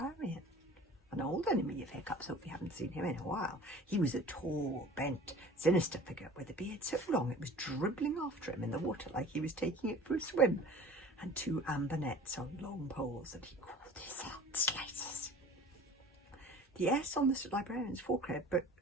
an old enemy of Hiccup's, if we haven't seen him in a while. He was a tall, bent, sinister figure with a beard so long it was dribbling after him in the water like he was taking it for a swim, and two amber nets on long poles that he called his heart slices. The S on the librarian's forehead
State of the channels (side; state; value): both; normal; correlation 0.44